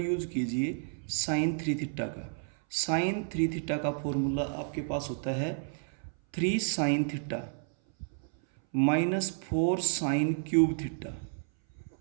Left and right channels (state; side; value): silent; left; 57 dB below the other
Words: कीजिए साइन 3 थीटा का। साइन 3 थीटा का फॉर्मूला आपके पास होता है 3 sine theta minus 4 sine cube theta.